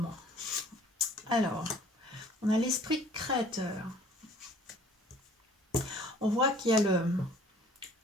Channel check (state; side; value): normal; both; correlation 0.53